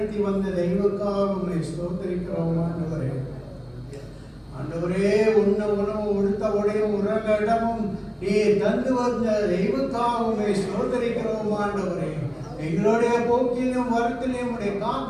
வந்த தெய்வக்காக ஸ்தோத்தரிக்கிறோம் ஆண்டவரே. ஆண்டவரே, உண்ண உணவு உடுத்த உடையும் உறங்க இடமும் நீ தந்து வந்த தெய்வக்காகவே ஸ்தோத்தரிக்கிறோம் ஆண்டவரே. எங்களுடைய போக்கிலும் வருத்திலும் உடைய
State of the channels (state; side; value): identical; both; correlation 1.00